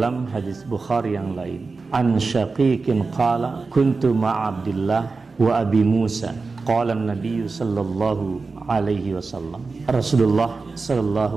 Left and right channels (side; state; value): left; quieter; 4.1 dB